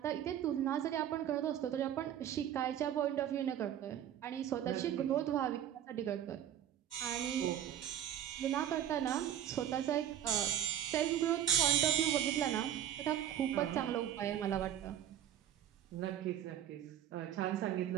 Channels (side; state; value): left; quieter; 10.5 dB